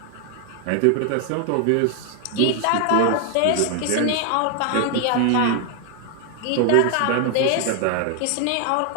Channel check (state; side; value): different; both; correlation 0.00